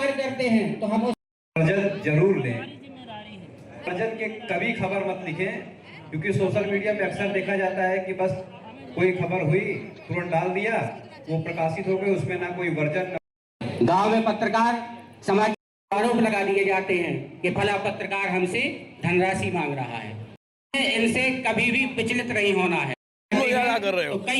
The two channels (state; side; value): identical; both; correlation 1.00